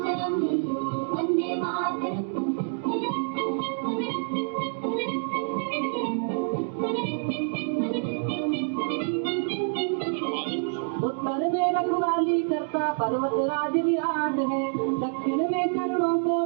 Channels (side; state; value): left; silent; digital silence